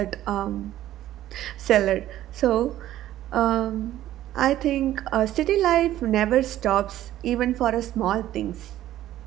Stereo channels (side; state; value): left; quieter; 13.4 dB